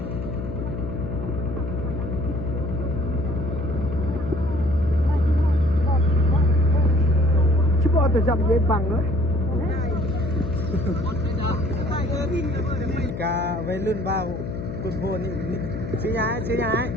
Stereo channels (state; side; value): noise; left; hum, 6 dB below the sound